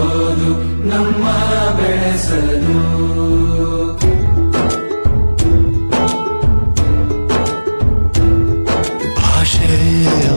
ನಮ್ಮ ಬೆಳೆಸಲು ಭಾಷೆ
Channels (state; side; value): inverted; both; correlation -1.00